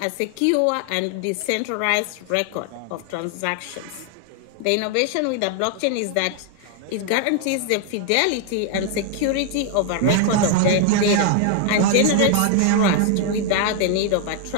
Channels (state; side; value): different; both; correlation 0.00